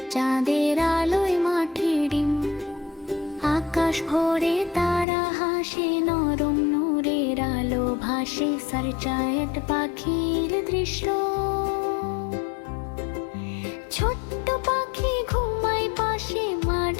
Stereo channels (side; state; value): right; drops out; at 5.1 s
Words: চাঁদের আলোয় মাঠে ডিম। আকাশ ভরে তারা হাসে, নরম নূরের আলো ভাসে, সারচায়েট পাখির দৃশ্য। ছোট্ট পাখি ঘুমায় পাশে, মা